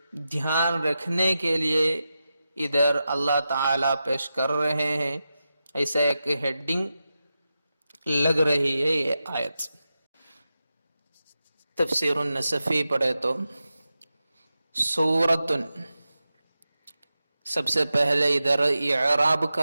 دھیان رکھنے کے لیے ادھر اللہ تعالیٰ پیش کر رہے ہیں۔ ایسا ایک ہیڈنگ لگ رہی ہے یہ آیت۔ تفسیر النصفی پڑھے تو سورتن، سب سے پہلے ادھر اعراب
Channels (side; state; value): both; inverted; correlation -0.91